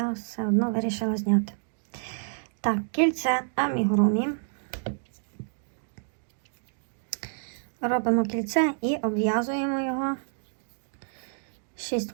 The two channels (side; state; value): left; silent; digital silence